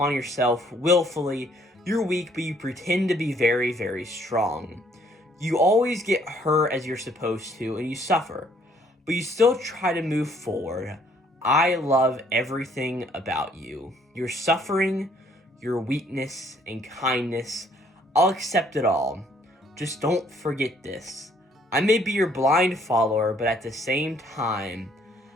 yourself willfully. You're weak, but you pretend to be very, very strong. You always get hurt as you're supposed to, and you suffer, but you still try to move forward. I love everything about you. Your suffering, your weakness, and kindness. I'll accept it all. Just don't forget this. I may be your blind follower, but at the same time,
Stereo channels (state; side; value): normal; both; correlation 0.63